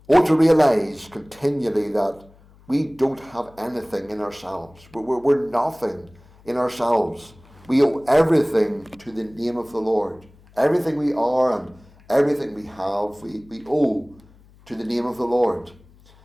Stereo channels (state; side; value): noise; left; hum, 27 dB below the sound